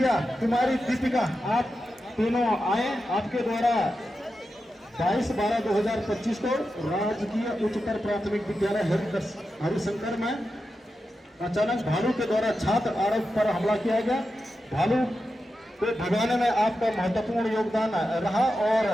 कुमारी दीपिका, आप तीनों आए। आपके द्वारा 22/12/2025 को राजकीय उच्चतर प्राथमिक विद्यालय हरिशंकर में अचानक भालू के द्वारा छात्र आरव पर हमला किया गया। भालू को भगाने में आपका महत्वपूर्ण योगदान रहा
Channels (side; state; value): both; normal; correlation 0.90